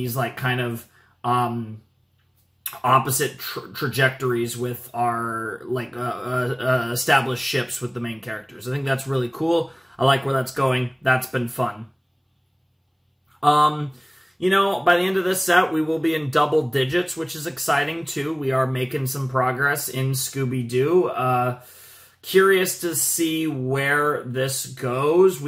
like, kind of opposite trajectories with our, like, established ships with the main characters. I think that's really cool. I like where that's going. That's been fun. You know, by the end of this set, we will be in double digits, which is exciting, too. We are making some progress in Scooby-Doo. Curious to see where this goes.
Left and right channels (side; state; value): both; identical; correlation 1.00